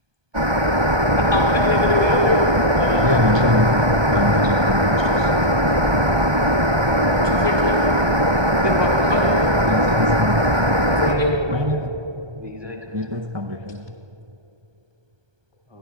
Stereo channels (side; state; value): left; late; 1.2 ms